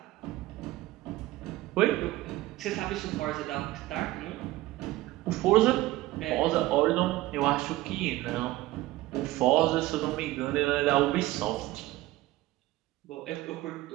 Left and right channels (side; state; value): left; quieter; 17.3 dB